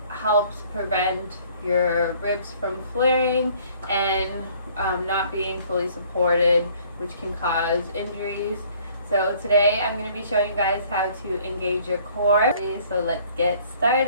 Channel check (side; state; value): both; inverted; correlation -0.58